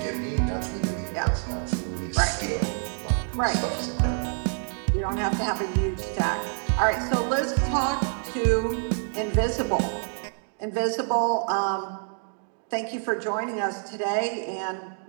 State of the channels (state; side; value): silent; left; 55 dB below the other